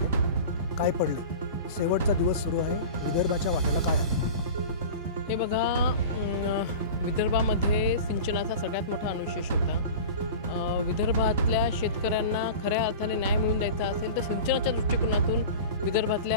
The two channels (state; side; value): inverted; both; correlation -0.34